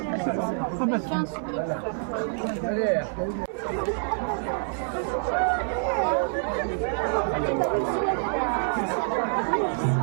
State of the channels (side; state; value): left; silent; digital silence